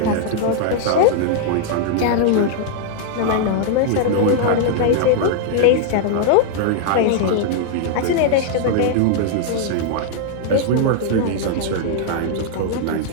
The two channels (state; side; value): different; both; correlation -0.01